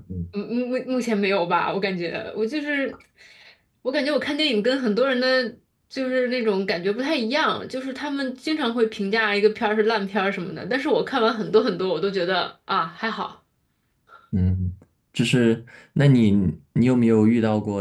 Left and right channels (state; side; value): identical; both; correlation 1.00